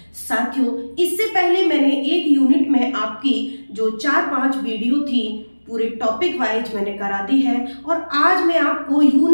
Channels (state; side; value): inverted; both; correlation -1.00